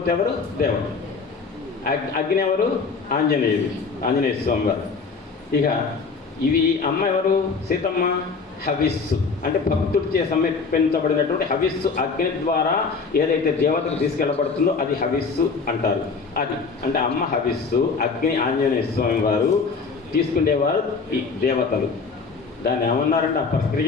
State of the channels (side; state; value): right; quieter; 4.8 dB